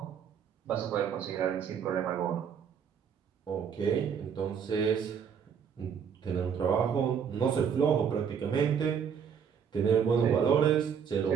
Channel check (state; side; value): quieter; left; 7.4 dB